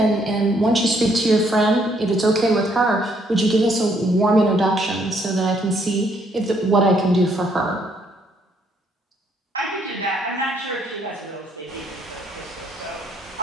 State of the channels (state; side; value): normal; both; correlation 0.69